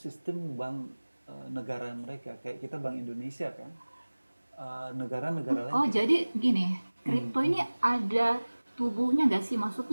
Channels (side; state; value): both; inverted; correlation -1.00